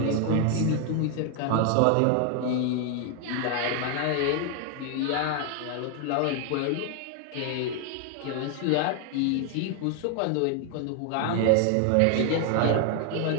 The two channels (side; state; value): both; different; correlation 0.00